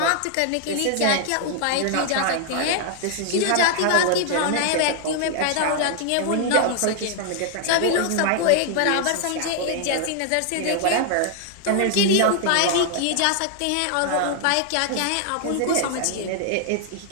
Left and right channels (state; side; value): different; both; correlation 0.00